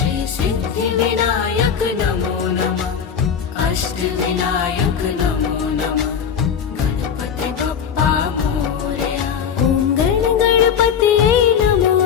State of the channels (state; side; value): quieter; right; 7.5 dB